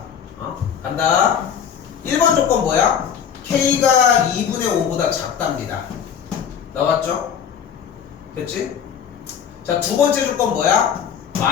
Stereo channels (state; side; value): quieter; right; 8.0 dB